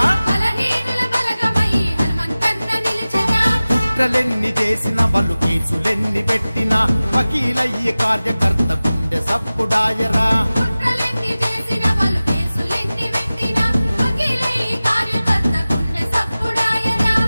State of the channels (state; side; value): inverted; both; correlation -0.97